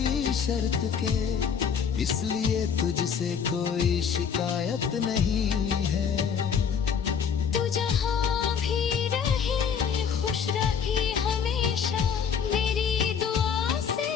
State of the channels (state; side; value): quieter; right; 7.0 dB